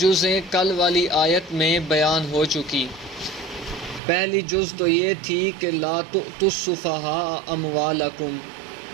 کل والی آیت میں بیان ہو چکی۔ پہلی جز تو یہ تھی کہ لا تؤتوا السفہاء اموالکم،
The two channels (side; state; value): left; drops out; at 4.0 s